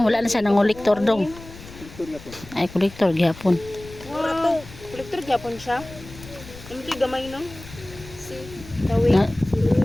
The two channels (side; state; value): left; noise; rumble, 17 dB below the sound